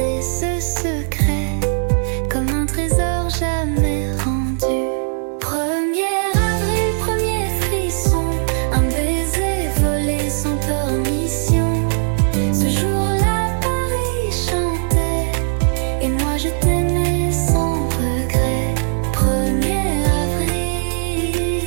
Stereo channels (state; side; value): silent; left; digital silence